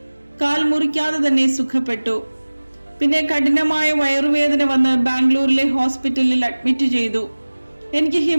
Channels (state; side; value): inverted; both; correlation -1.00